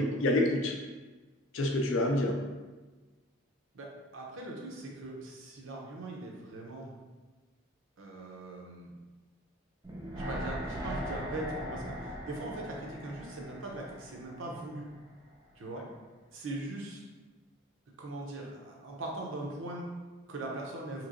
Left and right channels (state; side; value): normal; both; correlation 0.42